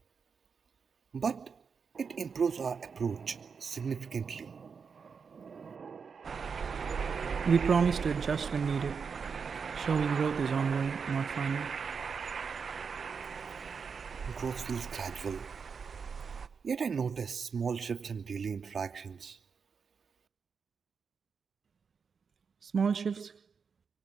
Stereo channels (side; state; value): left; quieter; 5.8 dB